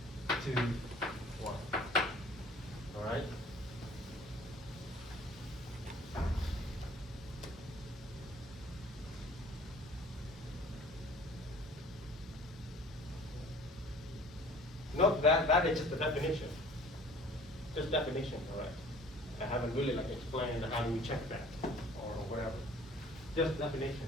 to y. All right? Note that is just the definition. Just definition, correct? I haven't really like explained how do we check that or whatever. Just definition.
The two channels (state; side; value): normal; both; correlation 0.49